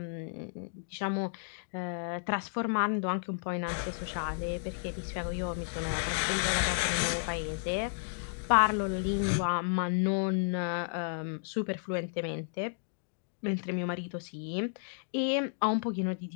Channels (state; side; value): silent; right; digital silence